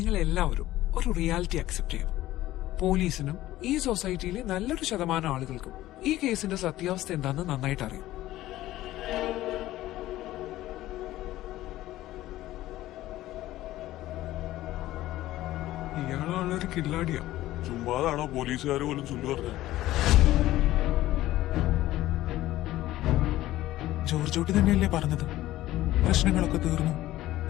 എല്ലാവരും ഒരു റിയാലിറ്റി അക്സെപ്റ്റ് ചെയ്യും. പോലീസിനും ഈ സൊസൈറ്റിയിലെ നല്ലൊരു ശതമാനം ആളുകൾക്കും ഈ കേസിന്റെ സത്യാവസ്ഥ എന്താണെന്ന് നന്നായിട്ട് അറിയാം. ഇയാളാണൊരു കില്ലാടിയാ. ചുമ്മാതാണോ പോലീസുകാർ പോലും ചൊല്ലു പറഞ്ഞത്? ജോർജോട്ടി തന്നെയല്ലേ പറഞ്ഞത് പ്രശ്നങ്ങളൊക്കെ തീർന്നു,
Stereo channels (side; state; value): right; quieter; 15.4 dB